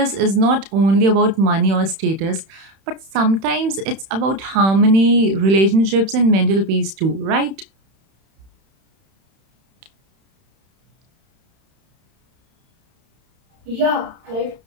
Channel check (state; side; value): late; left; 31 ms